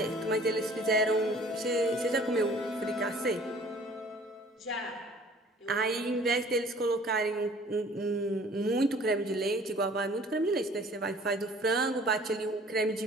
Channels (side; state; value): both; normal; correlation 0.52